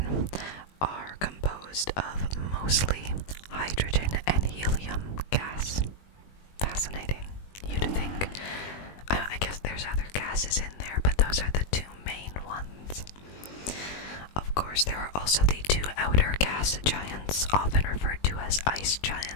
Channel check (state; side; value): late; right; 20 ms